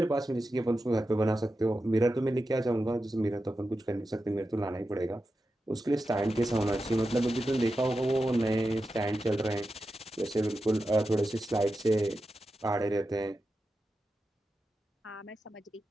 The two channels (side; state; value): both; normal; correlation 0.91